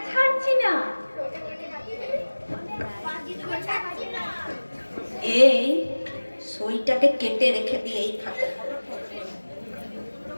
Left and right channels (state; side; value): inverted; both; correlation -1.00